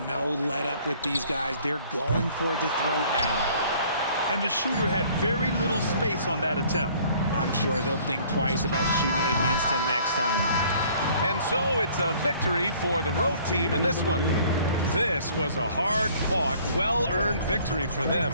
No let up with these guys. They're going for the throat now. And the shooter had very little space on that attempt. I'm sure they'll think twice about shooting against him next time. And so it's a victory for the road team in this one. This was a hard-fought, well-earned victory for them.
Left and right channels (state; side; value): inverted; both; correlation -0.56